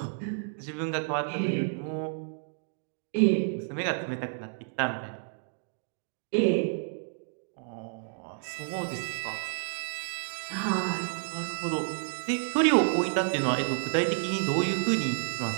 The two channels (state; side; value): silent; left; digital silence